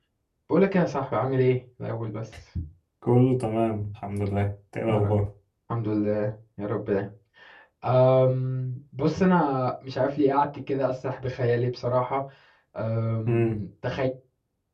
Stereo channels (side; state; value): both; identical; correlation 1.00